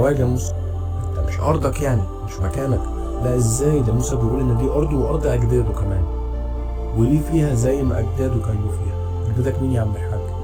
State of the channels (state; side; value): identical; both; correlation 1.00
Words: موسى، انت مش ارضك يعني، مش مكانك. لا ازاي، ده موسى بيقول ان دي ارضه وارض اجداده كمان، وليه فيها زي ما اجداده كانوا فيها. اجدادك مين يا عم الحاج؟